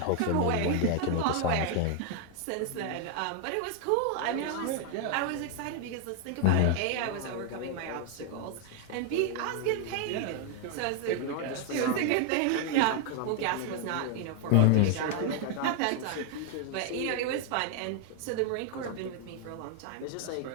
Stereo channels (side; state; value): both; different; correlation 0.00